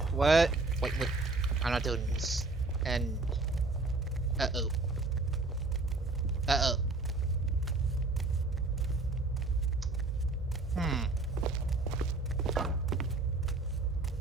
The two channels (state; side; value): quieter; left; 3.3 dB